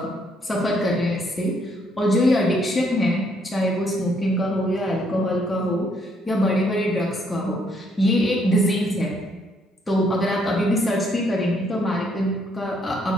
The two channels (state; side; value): normal; both; correlation 0.70